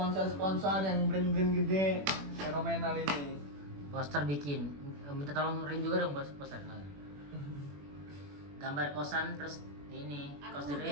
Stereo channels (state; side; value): late; left; 21 ms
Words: sponsor yang brand-brand gede fenomenal ini. poster bikin minta tolong Rin juga dong poster nah. Gambar kosan terus ini Aku kos The